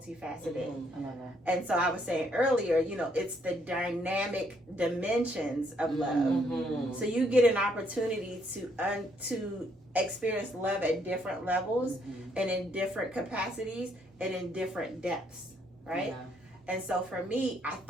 I love that. And so I was saying earlier, it's the dynamic dimensions of love. So you get an opportunity to experience love at different levels and in different capacities and in different depths, right? And so for me, I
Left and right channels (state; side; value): normal; both; correlation 0.71